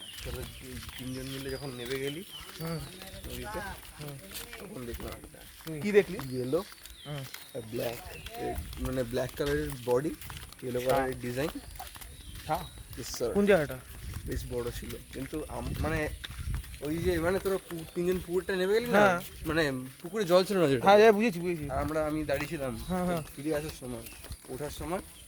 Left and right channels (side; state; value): both; identical; correlation 1.00